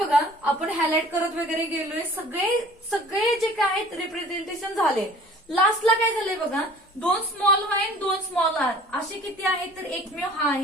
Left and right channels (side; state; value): both; normal; correlation 0.49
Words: आपण हायलाइट करत वगैरे गेलोय, सगळे जे काय आहेत रिप्रेझेंटेशन झाले. लास्टला काय झालंय बघा 2 स्मॉल वाय 2 स्मॉल आर असे किती आहेत, तर एकमेव हा